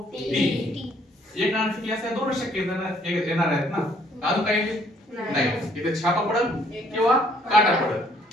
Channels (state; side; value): normal; both; correlation 0.64